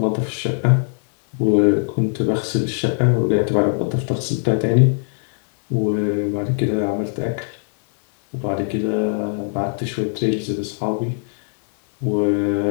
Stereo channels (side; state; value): right; silent; digital silence